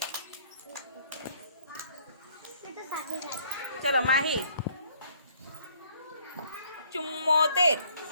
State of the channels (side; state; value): both; inverted; correlation -0.63